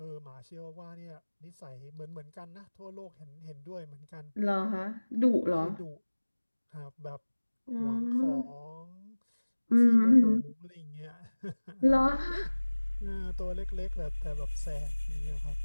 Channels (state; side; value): inverted; both; correlation -1.00